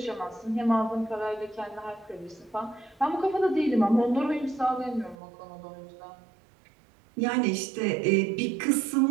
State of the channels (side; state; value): left; drops out; at 5.2 s